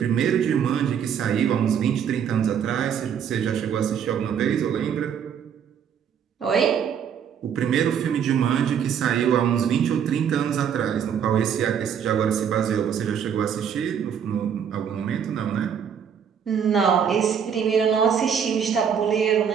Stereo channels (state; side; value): quieter; left; 8.0 dB